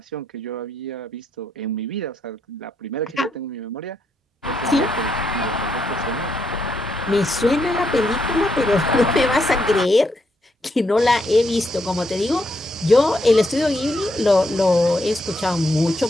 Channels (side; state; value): both; normal; correlation 0.78